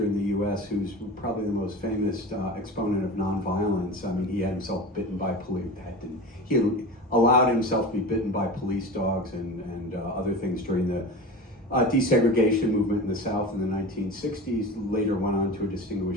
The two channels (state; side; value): normal; both; correlation 0.31